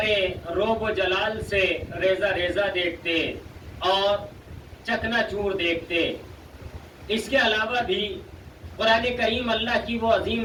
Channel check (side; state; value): both; identical; correlation 1.00